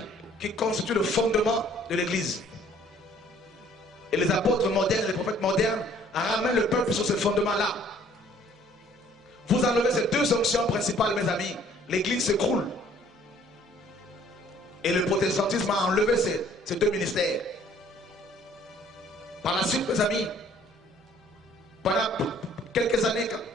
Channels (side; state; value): both; normal; correlation 0.58